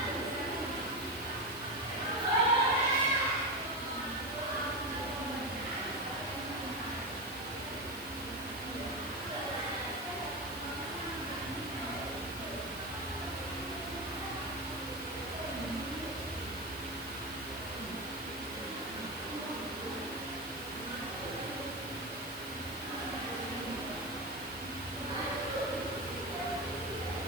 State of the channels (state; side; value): noise; left; hiss, 15 dB below the sound